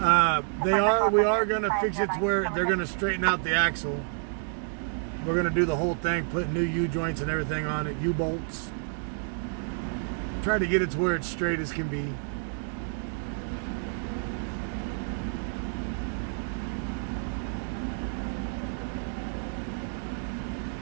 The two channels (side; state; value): left; silent; 59 dB below the other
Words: We are going to fix it to where they're going to straighten out the axle. We're going to do the whole thing, put new U-joints and everything on it, U-bolts. Try to get it to where it's straight as can be.